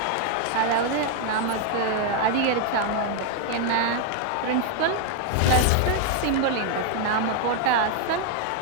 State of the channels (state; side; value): different; both; correlation 0.00